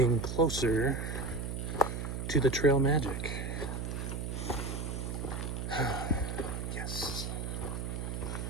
closer to the trail magic. Yes.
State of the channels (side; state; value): right; noise; hum, 4 dB below the sound